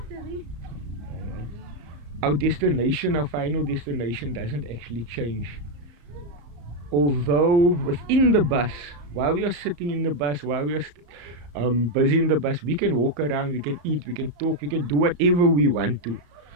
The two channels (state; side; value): late; left; 34 ms